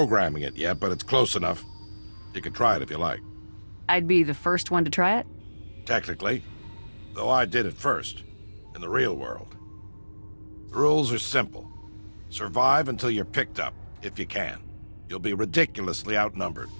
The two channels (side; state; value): both; inverted; correlation -1.00